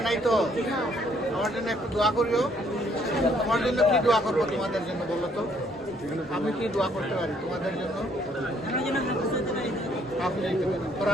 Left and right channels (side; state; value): both; normal; correlation 0.66